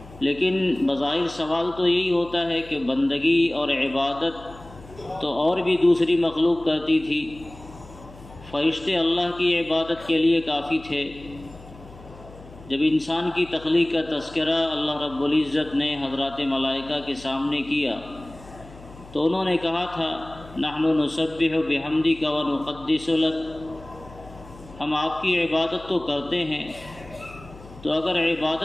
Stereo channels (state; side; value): noise; left; hum, 19 dB below the sound